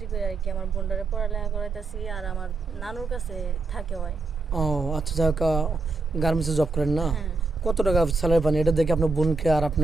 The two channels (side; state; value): left; quieter; 3.6 dB